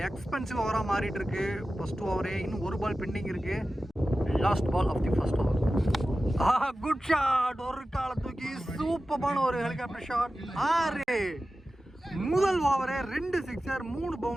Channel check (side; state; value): both; normal; correlation 0.94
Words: எக்ஸ்பென்சிவ் ஓவரா மாறிட்டு இருக்கு. ஃபர்ஸ்ட் ஓவரே இன்னும் ஒரு பால் பெண்டிங் இருக்கு. Last ball of the first over. Good shot, ஒரு கால தூக்கி சூப்பரான ஒரு ஹெலிகாப்டர் ஷாட். 6 முதல் ஓவரே 2 சிக்ஸர் 3